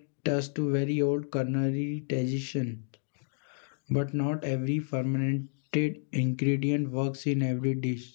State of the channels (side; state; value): right; silent; digital silence